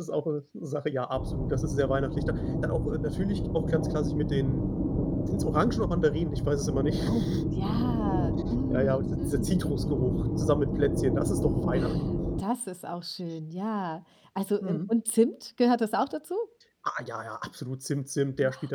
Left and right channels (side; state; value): both; identical; correlation 1.00